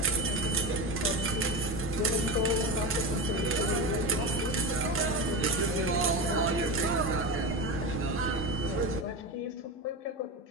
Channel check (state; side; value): normal; both; correlation 0.22